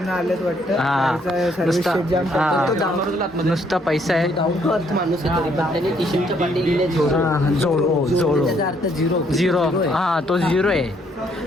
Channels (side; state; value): both; normal; correlation 0.69